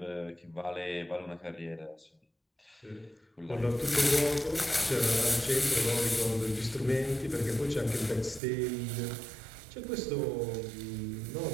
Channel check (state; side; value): drops out; left; at 8.4 s